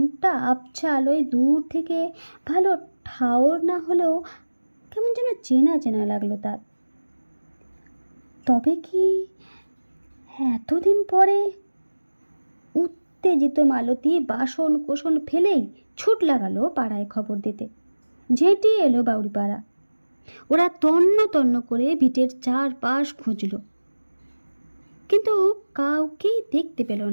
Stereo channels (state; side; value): inverted; both; correlation -1.00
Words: আবছা আলোয় দূর থেকে ভালো ঠাওর না হলেও কেমন যেন চেনা চেনা লাগলো তার। তবে কি এতদিন পরে? উত্তেজিত মালতী বাসন কোসন ফেলেই ছুট লাগালো পাড়ায় খবর দিতে। ঝেঁটিয়ে এলো বাউরিপাড়া। ওরা তন্ন তন্ন করে ভিটের চারপাশ খুঁজল, কিন্তু কাউকেই দেখতে পেল